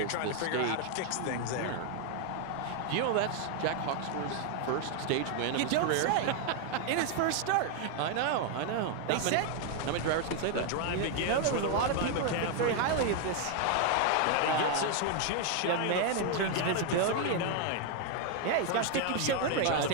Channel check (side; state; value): both; different; correlation 0.00